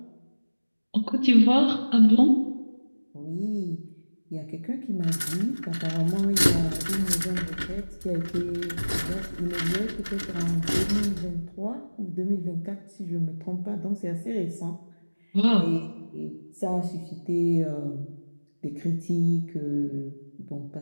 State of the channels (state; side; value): inverted; both; correlation -1.00